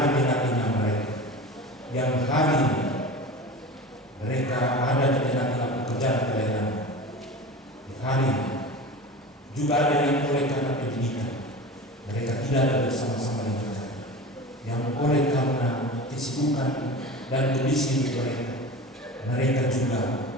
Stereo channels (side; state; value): both; normal; correlation 0.33